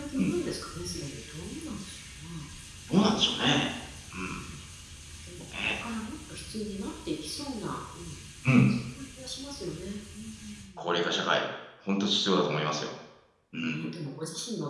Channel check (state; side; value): identical; both; correlation 1.00